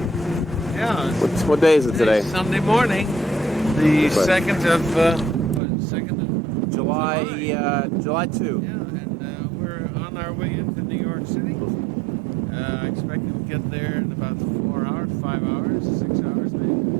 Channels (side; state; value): left; drops out; at 5.6 s